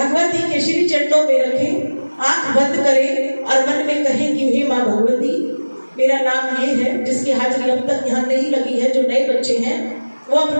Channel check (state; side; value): inverted; both; correlation -1.00